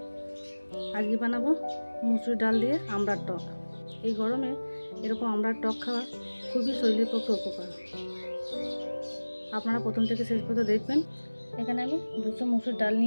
আজকে বানাবো মুসুর ডাল দিয়ে আমড়ার টক। এই গরমে এরকম আমড়ার টক খাওয়া খুবই শরীরের পক্ষে উপকার। আপনারা প্রথম থেকে শেষ পর্যন্ত দেখবেন। এখানে আমি 200 মুসুর ডাল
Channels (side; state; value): both; inverted; correlation -1.00